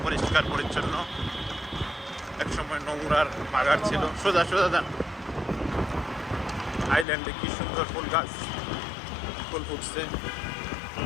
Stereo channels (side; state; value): right; drops out; at 7.1 s